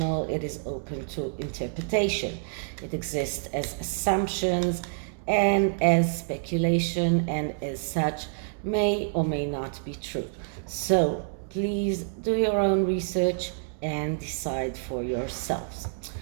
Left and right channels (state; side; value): silent; left; digital silence